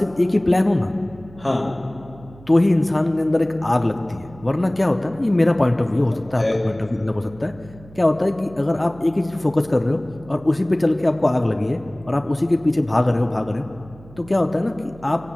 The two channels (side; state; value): right; noise; hum, 21 dB below the sound